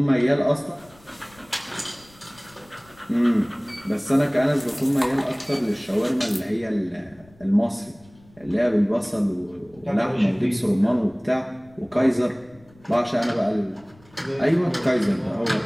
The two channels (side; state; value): left; noise; rumble, 27 dB below the sound